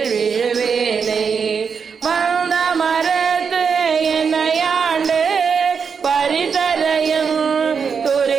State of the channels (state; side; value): quieter; left; 6.1 dB